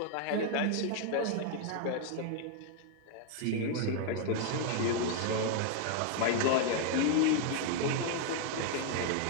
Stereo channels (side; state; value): both; different; correlation 0.00